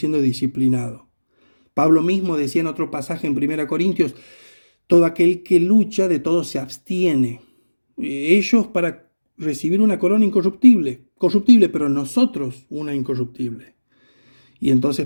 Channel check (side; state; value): both; inverted; correlation -1.00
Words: disciplinado. Pablo mismo decía en otro pasaje en 1 Corintios, todo aquel que lucha de todo se abstiene. Ellos para recibir una corona corruptible, pero nosotros una incorruptible. Y entonces